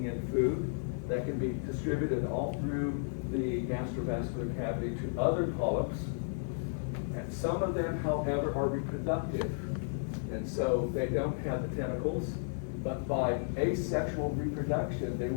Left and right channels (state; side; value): silent; right; digital silence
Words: in food that can be distributed all through the gastrovascular cavity to other polyps. And some of them, however, are reproductive. And so they don't have the tentacles, but by asexual reproduction, they